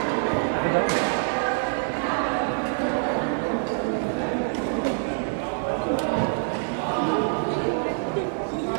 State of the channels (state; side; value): silent; left; 61 dB below the other